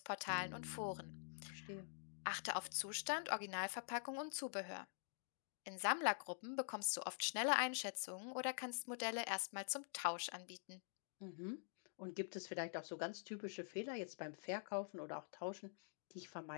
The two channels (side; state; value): right; silent; digital silence